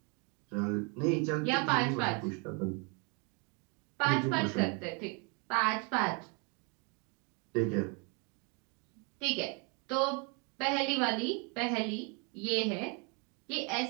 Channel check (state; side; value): quieter; left; 33.2 dB